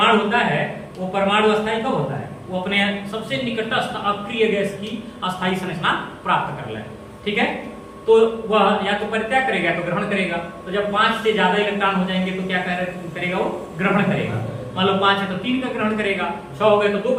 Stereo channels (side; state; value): both; identical; correlation 1.00